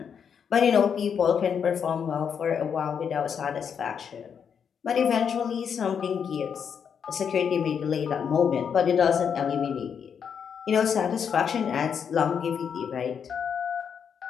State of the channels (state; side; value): quieter; right; 7.3 dB